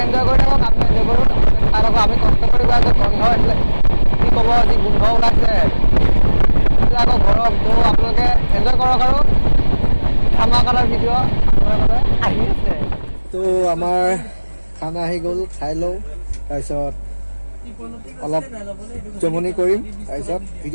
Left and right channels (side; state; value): both; inverted; correlation -1.00